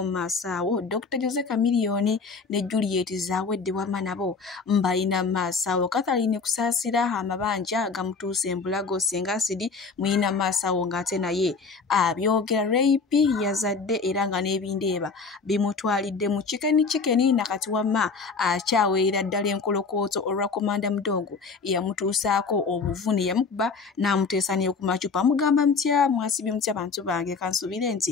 mu maaso awo. Dr. Jose Chameleone ne Juliet Zawedde wamma nabo mbayina maaso awo. Catherine kusaasira amabanja gamutuuse embulago singa asidi muyina maaso awo ng'ate naye abyogera rape yazadde era nga n'ebindeeba bimutwalidde mu chikeni nakati wamma akyaweera ddala enkolokooto olwa Komanda Mudogo yamutuusaako obuvune yamukuba n'amuteesa ne ku macupa. Mugamba mutya mwasibye mutya bantu bange kansubire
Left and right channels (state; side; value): quieter; right; 4.7 dB